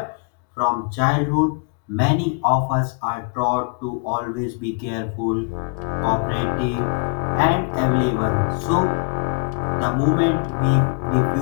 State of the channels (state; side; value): quieter; right; 36.9 dB